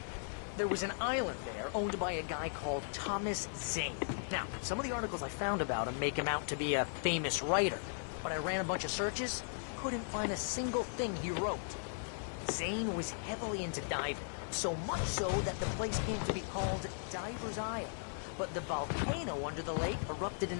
there was an island there owned by a guy called Thomas Zane. Now, some of the articles I found about him make him out to be a famous writer, but I ran a bunch of searches, couldn't find a single thing he wrote. Zane was heavily into diving, so much so that the place came to be called Diver's Isle. But the volcano under the lake erupted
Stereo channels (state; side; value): silent; right; digital silence